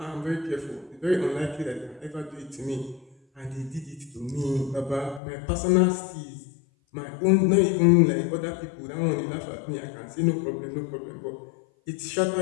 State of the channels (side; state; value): right; drops out; at 5.2 s